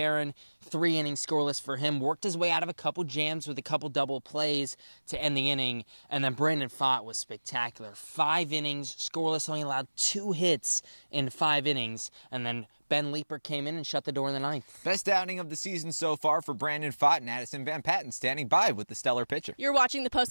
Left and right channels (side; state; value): both; inverted; correlation -1.00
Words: 3 innings scoreless for him, worked his way out of a couple jams with a couple double plays to end the inning. And then Brandon Pfaadt was spectacular. 5 innings scoreless, only allowed 2 hits in 5 innings. And then Ben Leeper came in and shut the door in the ninth. Best outing of the season so far for Brandon Pfaadt, and Addison van Patten standing by with the stellar pitcher. You're watching the